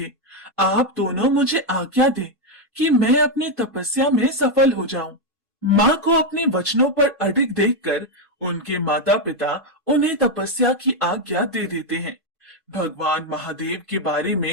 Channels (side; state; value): both; normal; correlation 0.03